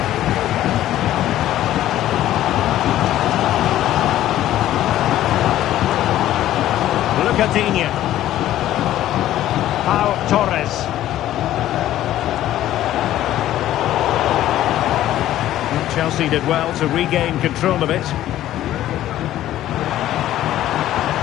Lucadinha. Pau Torres. And Chelsea did well to regain control of it.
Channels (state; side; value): quieter; right; 13.3 dB